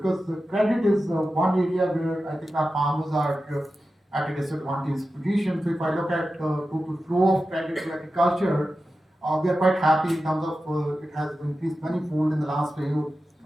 the credit is one area where I think our farmers are at a disadvantaged position. So if I look at total flow of credit to agriculture, we are quite happy in terms of it has increased manifold in the last 2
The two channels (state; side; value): normal; both; correlation 0.93